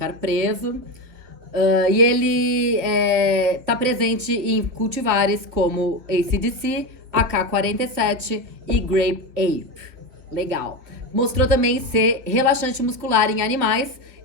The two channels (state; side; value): late; left; 2.9 ms